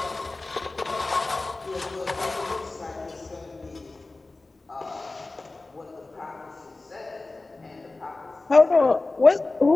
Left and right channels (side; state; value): right; quieter; 3.3 dB